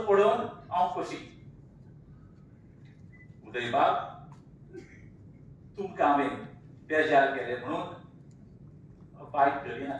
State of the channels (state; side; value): identical; both; correlation 1.00